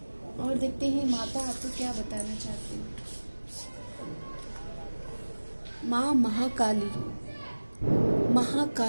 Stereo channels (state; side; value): inverted; both; correlation -1.00